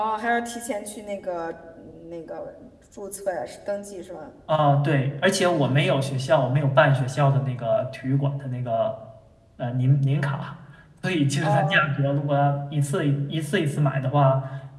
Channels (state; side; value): identical; both; correlation 1.00